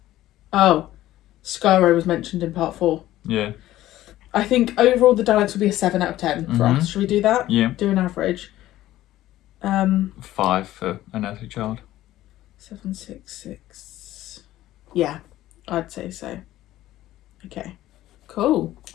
Oh, Skyro was mentioned in part 4. Yeah. I think overall the Daleks would be a 7 out of 10 for us. Should we do that? Yeah. Do an average. 5 for An Earthly Child. 7, 6, 6. Yeah, I'd say so. Okay, cool.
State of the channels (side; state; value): right; quieter; 14.7 dB